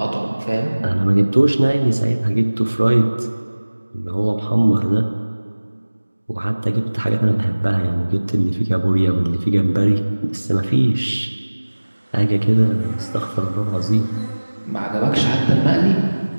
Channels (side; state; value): both; inverted; correlation -1.00